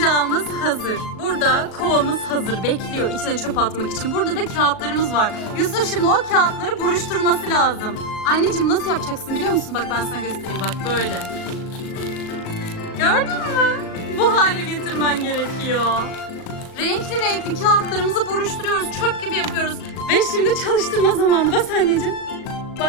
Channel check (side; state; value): right; late; 37 ms